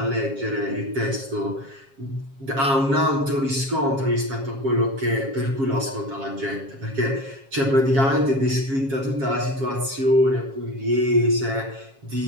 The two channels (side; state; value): left; late; 7.4 ms